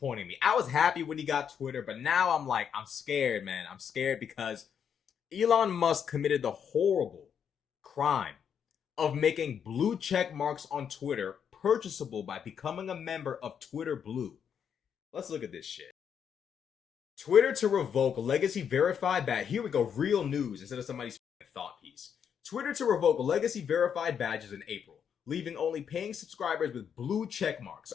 me. I was happy when he got Twitter, but now I'm scared, man. I'm scared because Elon Musk committed the horrible crime of making blue check marks on Twitter purchasable by becoming a member of Twitter Blue. Let's look at this shit. Twitter to revoke legacy verified badge. Here we go, real news instead of somebody's thought piece. Twitter to revoke legacy verified badges in April, leaving only paying subscribers with blue check marks.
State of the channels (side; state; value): right; quieter; 7.8 dB